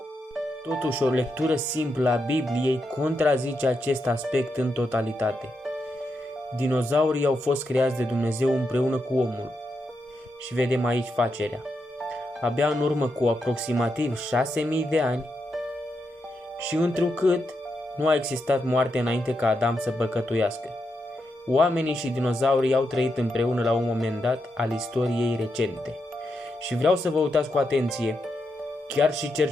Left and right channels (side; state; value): both; normal; correlation 0.84